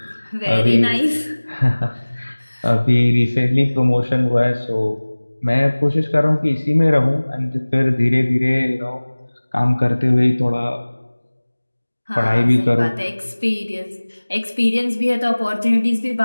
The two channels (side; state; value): both; inverted; correlation -1.00